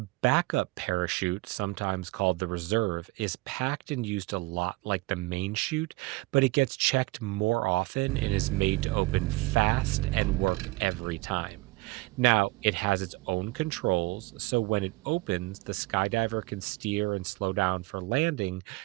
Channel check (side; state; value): left; quieter; 22.5 dB